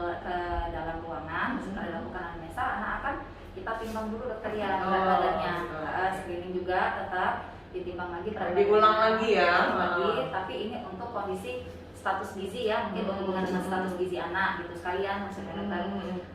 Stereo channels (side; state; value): both; identical; correlation 1.00